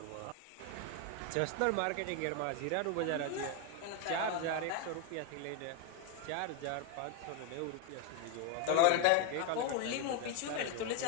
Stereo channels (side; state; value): both; different; correlation 0.01